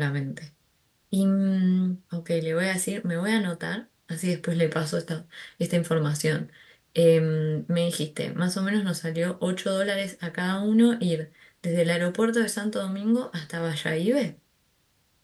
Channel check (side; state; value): both; identical; correlation 1.00